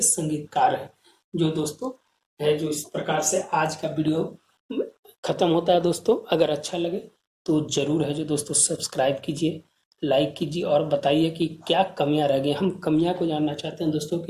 संगीतकार हैं। जो दोस्तों है जो इस प्रकार से आज का वीडियो खत्म होता है दोस्तों। अगर अच्छा लगे तो जरूर है जो दोस्तों सब्सक्राइब कीजिए, लाइक कीजिए और बताइए कि क्या कमियां रह गई। हम कमियां को जानना चाहते हैं दोस्तों,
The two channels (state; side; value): identical; both; correlation 1.00